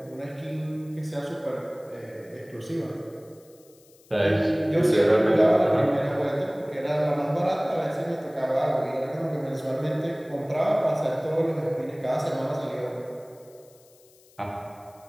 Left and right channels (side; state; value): left; noise; hiss, 29 dB below the sound